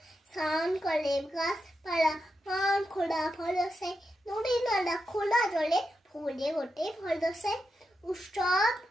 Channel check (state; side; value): normal; both; correlation 0.87